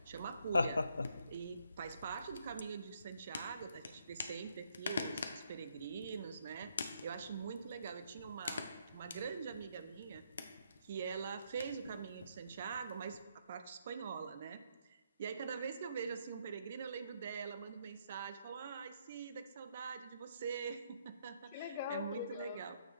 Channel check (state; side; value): inverted; both; correlation -0.73